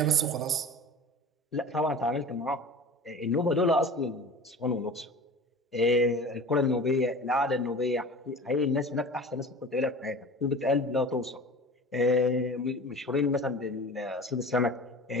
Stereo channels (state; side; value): normal; both; correlation 0.37